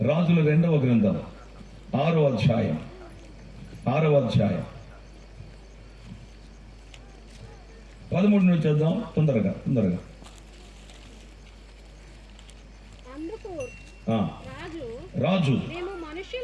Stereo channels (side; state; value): both; identical; correlation 1.00